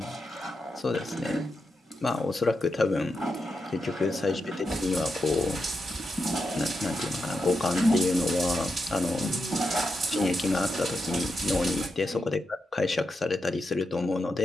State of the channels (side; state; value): both; normal; correlation 0.86